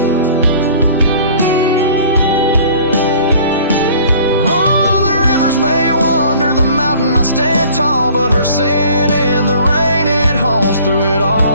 Oh, the rivers may wander, the mountain might stand tall, but her sin in the rain, it haunts through it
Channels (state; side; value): inverted; both; correlation -0.50